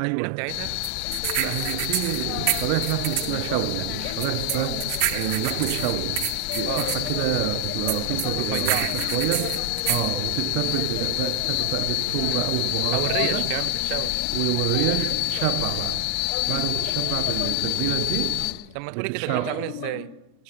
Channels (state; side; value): different; both; correlation 0.00